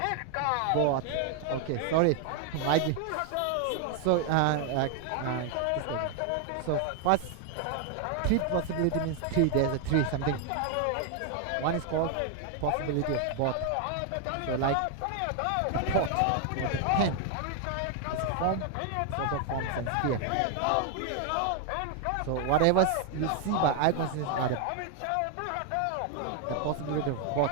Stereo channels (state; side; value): different; both; correlation 0.00